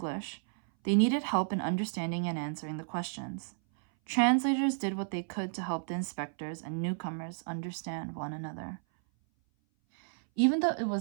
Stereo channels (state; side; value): silent; left; 56 dB below the other